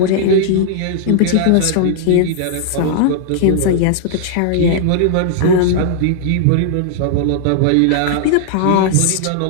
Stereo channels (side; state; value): both; different; correlation -0.01